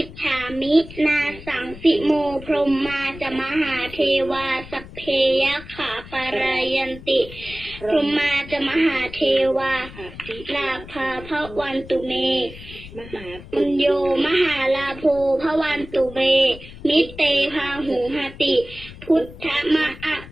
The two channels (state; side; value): noise; left; rumble, 16 dB below the sound